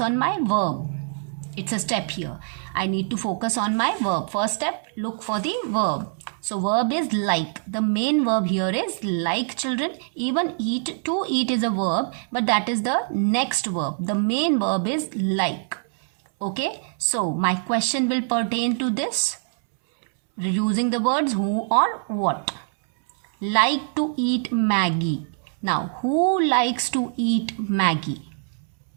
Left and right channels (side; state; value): left; silent; 63 dB below the other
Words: my verb. It's a step here. I need to focus on my verb. First step, look for the verb. So verb is like. The main verb here is like, children. Even eat, to eat is a verb, but that is the next verb. The main verb is like. Okay, so my question will pertain to this using the words who or what. Like to eat Maggi. Now, who likes to eat Maggi?